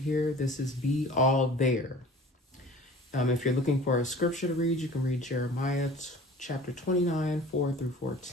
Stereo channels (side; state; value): both; normal; correlation 0.44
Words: here. This is Be All There. If you're looking for a scripture to read, you can read Jeremiah chapter 29, 4 through